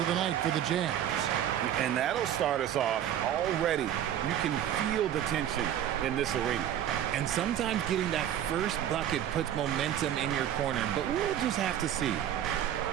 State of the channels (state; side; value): quieter; left; 10.7 dB